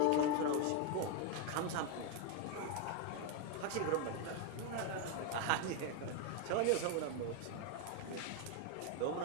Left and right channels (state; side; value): different; both; correlation 0.01